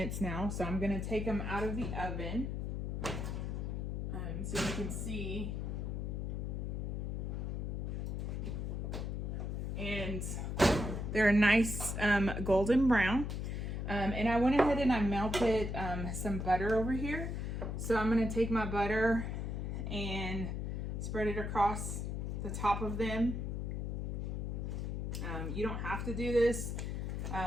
now. So I'm gonna take them out of the oven, so you can see. And they're a nice golden brown. And I went ahead and I melted some butter over here. So I'm gonna take my butter and spread it across the top of them. You don't have to do this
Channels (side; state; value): left; noise; hum, 2 dB below the sound